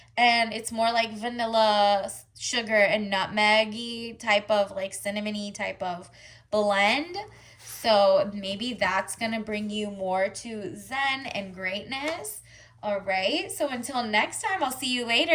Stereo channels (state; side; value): identical; both; correlation 1.00